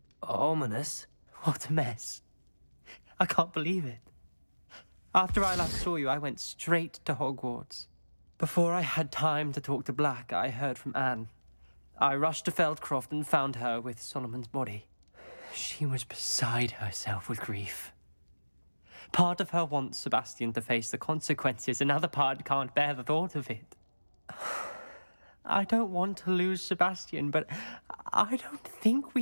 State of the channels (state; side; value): inverted; both; correlation -1.00